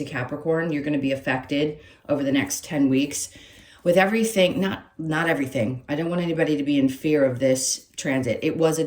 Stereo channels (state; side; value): identical; both; correlation 1.00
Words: Capricorn, you're going to be affected over the next 10 weeks with everything, not everything. I don't want anybody to be in fear of this transit. It was a